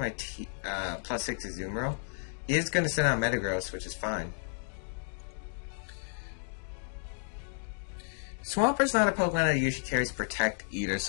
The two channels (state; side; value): silent; right; digital silence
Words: +6 Azumarill? He is going to send out Metagross, which is fine. Swampert's not a Pokemon that usually carries Protect either,